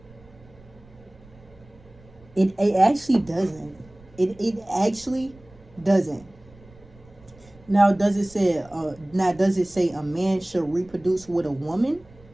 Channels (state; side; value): noise; right; rumble, 25 dB below the sound